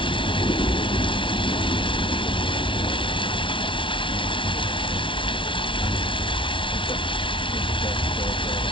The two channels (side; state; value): right; late; 0.25 ms